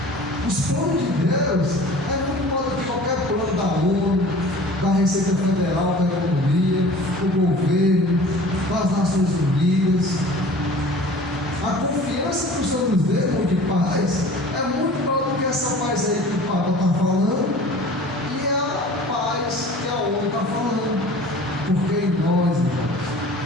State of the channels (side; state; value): both; normal; correlation 0.44